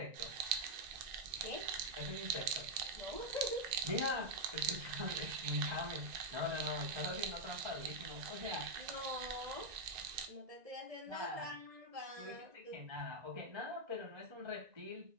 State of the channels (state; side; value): late; left; 1.9 ms